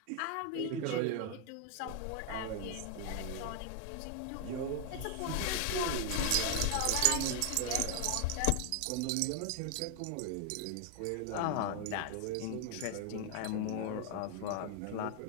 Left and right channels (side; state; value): both; different; correlation 0.00